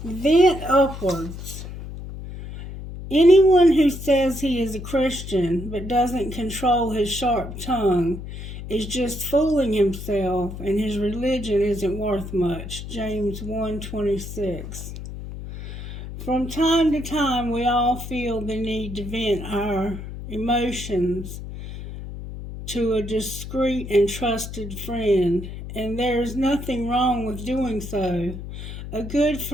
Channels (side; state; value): left; noise; hum, 10 dB below the sound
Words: Vent upwards. Anyone who says he is a Christian but doesn't control his sharp tongue is just fooling himself, and his religion isn't worth much. James 1:26. From time to time, we all feel the need to vent our emotions to a discreet and trusted friend, and there is nothing wrong with doing so. A good